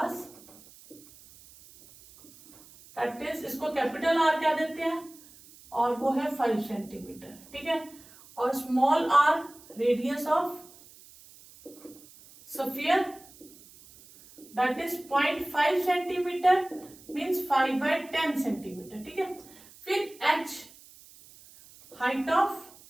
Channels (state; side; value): noise; right; hiss, 22 dB below the sound